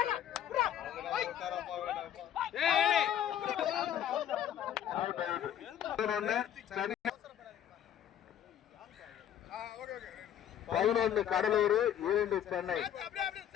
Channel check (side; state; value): right; quieter; 10.3 dB